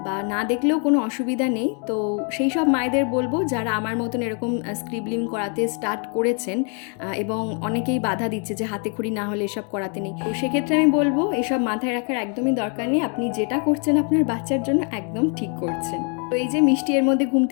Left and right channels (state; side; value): quieter; right; 39.5 dB